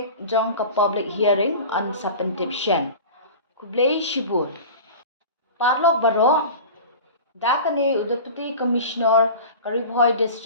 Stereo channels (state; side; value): inverted; both; correlation -0.35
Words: jong ke public hearing on Sapentipshan. Kublai Shibur. Parlok Baro, Dakane Udapati Commissioner Bhoi